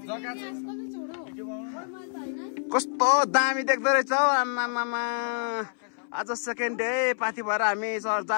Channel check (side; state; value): right; silent; 60 dB below the other